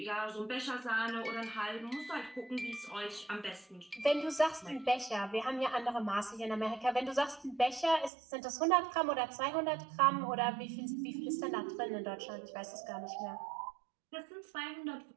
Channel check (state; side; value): drops out; left; at 8.1 s